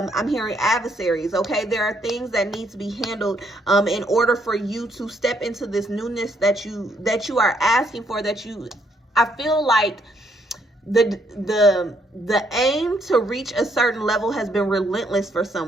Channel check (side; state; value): both; normal; correlation 0.71